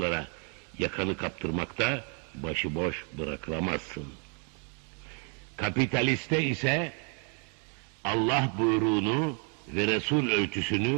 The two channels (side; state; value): left; quieter; 37.9 dB